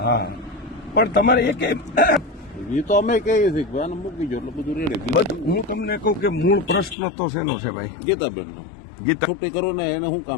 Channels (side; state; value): right; drops out; at 7.0 s